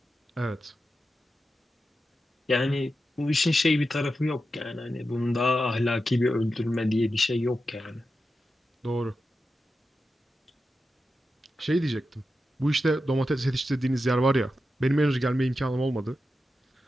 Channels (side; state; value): both; normal; correlation 0.90